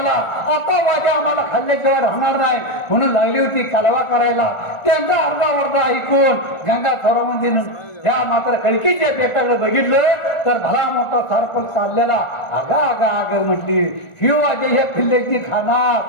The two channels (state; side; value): late; right; 1.4 ms